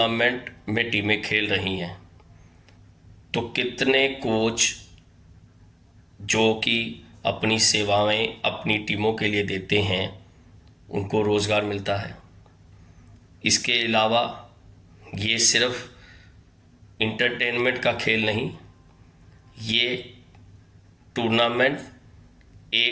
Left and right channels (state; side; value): identical; both; correlation 1.00